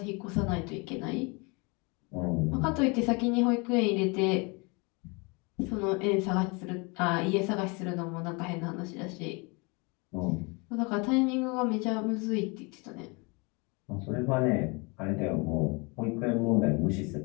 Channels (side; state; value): right; quieter; 29.6 dB